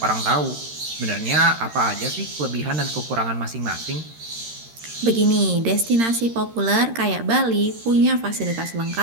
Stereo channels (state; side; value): late; left; 13 ms